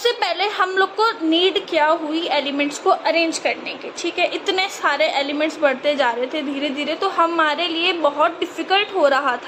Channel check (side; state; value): both; identical; correlation 1.00